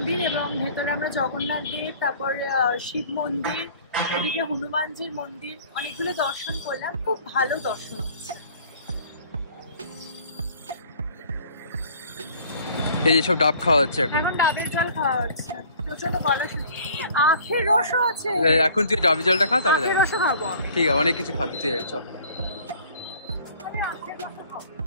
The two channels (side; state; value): both; inverted; correlation -0.52